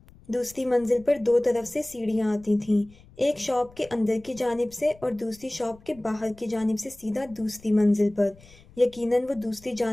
دوسری منزل پر 2 طرف سے سیڑھیاں آتی تھیں، ایک شاپ کے اندر کی جانب سے اور دوسری شاپ کے باہر کی جانب سے سیدھا دوسری منزل پر۔ یقیناً وہ دوسری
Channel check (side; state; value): left; noise; rumble, 25 dB below the sound